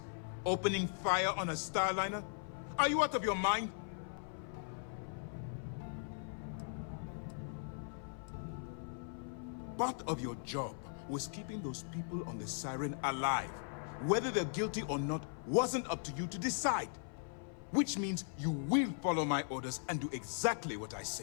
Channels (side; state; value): right; silent; 52 dB below the other